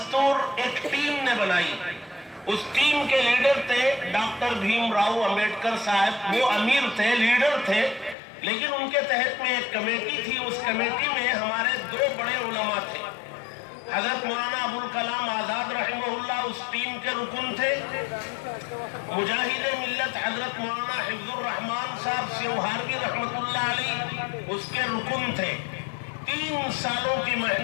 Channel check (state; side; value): drops out; right; at 8.2 s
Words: ایک ٹیم نے بنائی۔ اس ٹیم کے لیڈر تھے ڈاکٹر بھیم راؤ امبیڈکر صاحب، وہ امیر تھے، لیڈر تھے، لیکن ان کے تحت میں ایک کمیٹی تھی۔ اس کمیٹی میں ہمارے 2 بڑے علماء تھے، حضرت مولانا ابوالکلام آزاد رحمہ اللہ اس ٹیم کے رکن تھے، مجاہد ملت حضرت مولانا حفظ الرحمان صاحب سیوہاروی رحمۃ اللہ علیہ اس کے رکن تھے۔ 3 سالوں کی